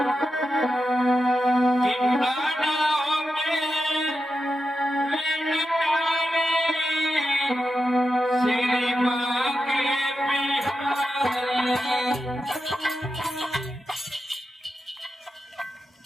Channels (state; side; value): normal; both; correlation 0.89